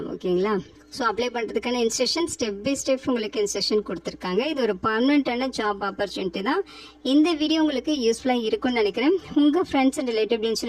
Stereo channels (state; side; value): identical; both; correlation 1.00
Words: ஓகேங்களா? ஸோ அப்ளை பண்ணுறதுக்கான இன்ஸ்ட்ரக்ஷன் ஸ்டெப் பை ஸ்டெப் உங்களுக்கு இன்ஸ்ட்ரக்ஷன் கொடுத்துருக்காங்க. இது ஒரு பர்மனெண்ட்டான ஜாப் ஆப்பர்ச்சுனிட்டி தான். இந்த வீடியோ உங்களுக்கு யூஸ்ஃபுல்லாக இருக்கும்னு நினைக்கிறேன். உங்கள் ஃப்ரெண்ட்ஸ் அண்ட் ரிலேட்டிவ்னு